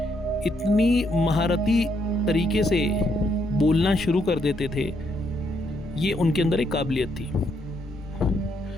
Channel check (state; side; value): normal; both; correlation 0.75